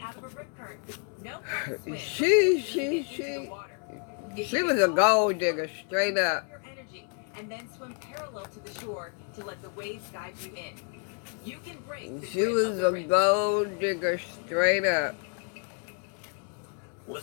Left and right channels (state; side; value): quieter; right; 39.2 dB